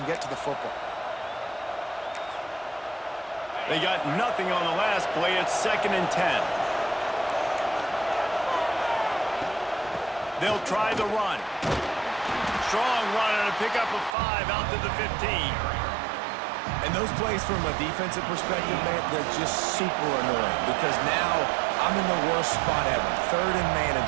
get to the football. They got nothing on the last play. It's 2nd and 10. They'll try the run. strong run and a pick up of 5 out to the 15. And those plays from a defensive perspective, man, they're just super annoying because now I'm in the worst spot ever. Third and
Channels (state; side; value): drops out; left; at 14.2 s